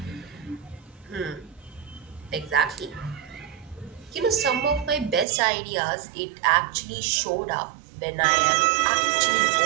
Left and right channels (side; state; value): left; drops out; at 5.2 s